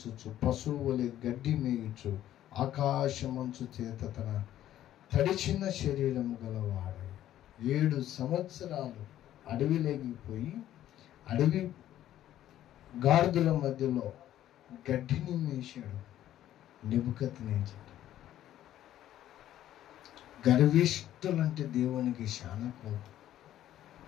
పశువులే గడ్డి మేయుచు ఆకాశమంచు చేత తన తడిచిన శరీరము గలవాడు 7 సంవత్సరాలు అడవిలోకి అడవి గాడిదల మధ్యలో గడ్డిని మేశాడు నెబుకద్నెజరు. గర్విష్ఠులంటే దేవునికి చాలా కోపం.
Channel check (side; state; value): right; quieter; 12.4 dB